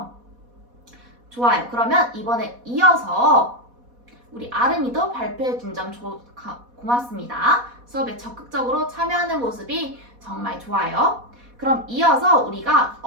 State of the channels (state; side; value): late; left; 4.1 ms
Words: 좋아요. 그러면 이번에 이어서 우리 아름이도 발표해준 점 고맙습니다. 수업에 적극적으로 참여하는 모습이 정말 좋아요. 그럼 이어서 우리가